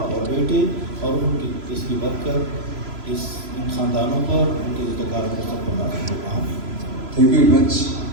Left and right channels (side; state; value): left; late; 3.0 ms